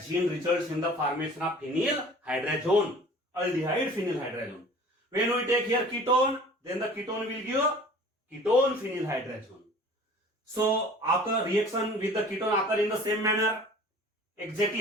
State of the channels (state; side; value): normal; both; correlation 0.46